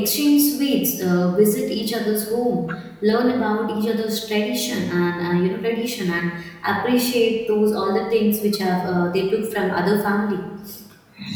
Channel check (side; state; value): both; identical; correlation 1.00